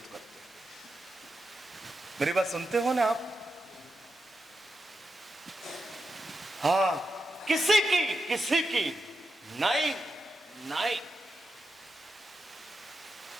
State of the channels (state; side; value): normal; both; correlation 0.88